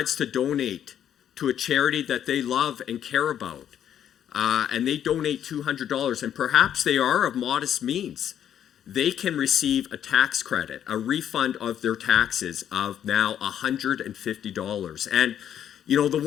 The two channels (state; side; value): quieter; right; 9.9 dB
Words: to donate to a charity that they love and care about, and they donate $200, and perhaps they are of modest means, they can receive a tax credit, a refund of their taxes of now $150. And, you know, the